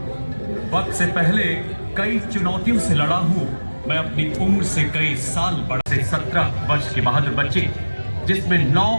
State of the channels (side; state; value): both; inverted; correlation -1.00